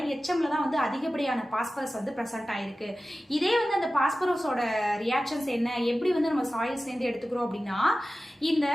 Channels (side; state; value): both; normal; correlation 0.95